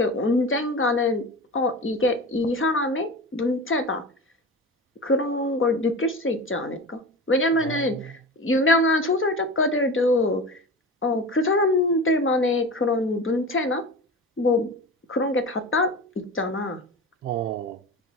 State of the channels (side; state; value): both; normal; correlation 0.31